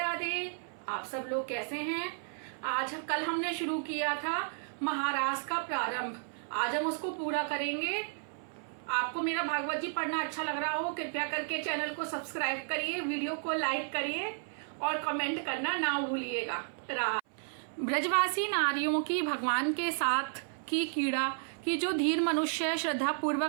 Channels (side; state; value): left; silent; 56 dB below the other